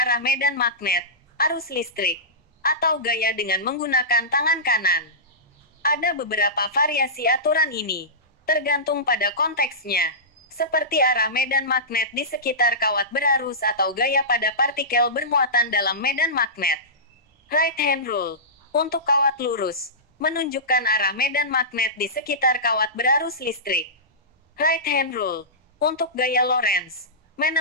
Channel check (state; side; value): normal; both; correlation -0.18